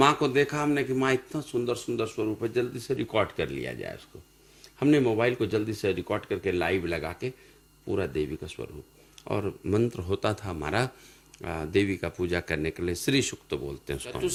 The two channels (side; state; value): both; identical; correlation 1.00